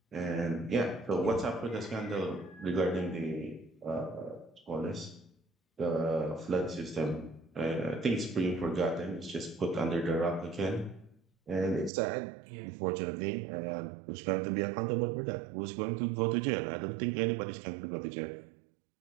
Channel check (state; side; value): drops out; left; at 11.9 s